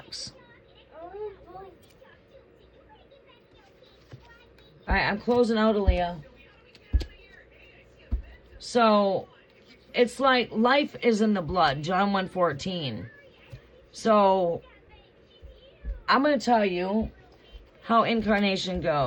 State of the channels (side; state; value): both; identical; correlation 1.00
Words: All right, I'm closing out, Aaliyah. So, it's like life is in the blood, John 1:14. So, I'm going to tell you how incarnation